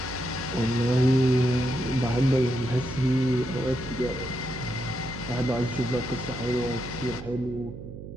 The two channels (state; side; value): noise; right; hum, 11 dB below the sound